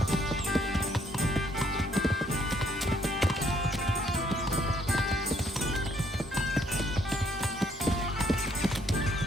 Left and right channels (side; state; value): both; normal; correlation 0.67